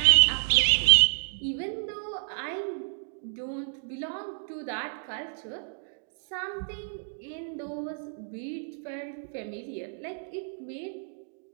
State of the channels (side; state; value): left; silent; digital silence